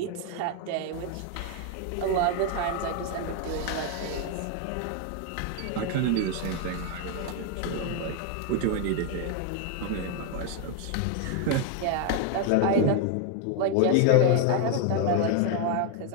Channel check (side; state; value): both; different; correlation 0.01